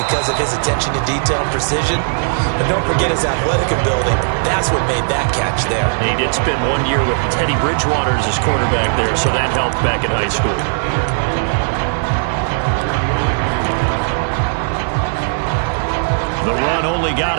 of his attention to detail and precision. And don't forget his athletic ability. That's what made that catch there. He did spend 1 year with Teddy Bridgewater as his quarterback there, so that helped back in high school. The run only got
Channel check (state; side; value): silent; left; 56 dB below the other